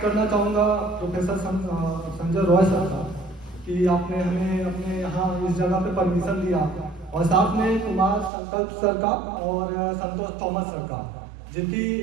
करना चाहूँगा प्रोफेसर संजय रॉय सर का कि आपने हमें अपने यहाँ इस जगह पे परमिशन दिया, और साथ में कुमार संकल्प सर का और संतोष थॉमस सर का, जिनकी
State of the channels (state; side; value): drops out; left; at 8.3 s